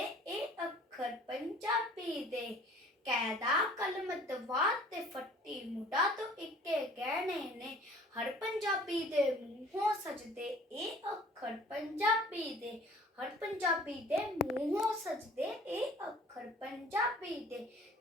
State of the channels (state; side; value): normal; both; correlation 0.51